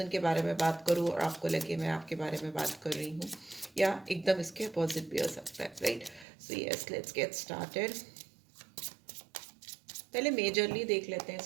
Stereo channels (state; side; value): drops out; left; at 6.2 s